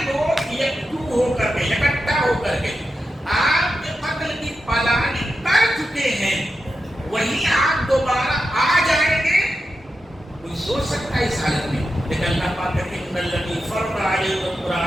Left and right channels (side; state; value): both; normal; correlation 0.89